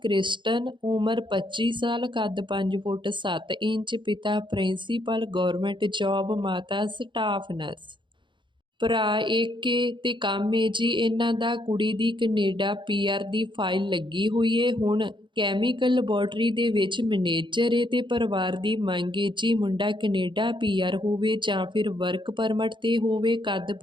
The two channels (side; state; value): left; late; 0.23 ms